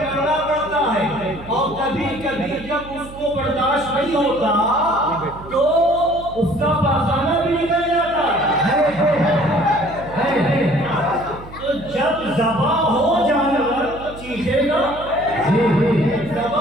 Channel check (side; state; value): right; noise; hum, 16 dB below the sound